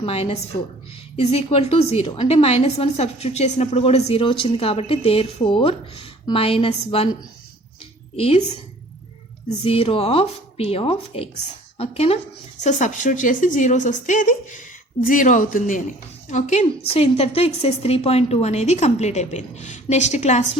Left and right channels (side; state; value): both; normal; correlation 0.51